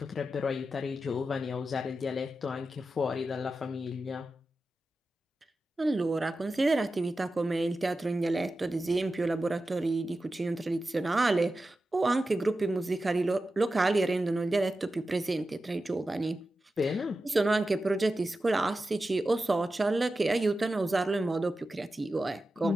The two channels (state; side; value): normal; both; correlation 0.92